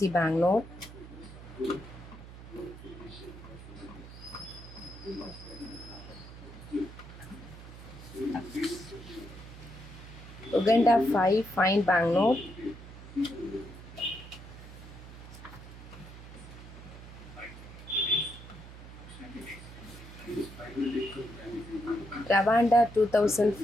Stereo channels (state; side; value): noise; right; hum, 15 dB below the sound